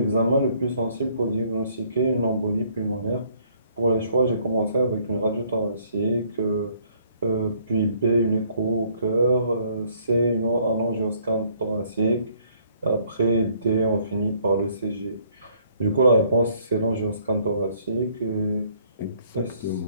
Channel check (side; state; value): both; inverted; correlation -0.64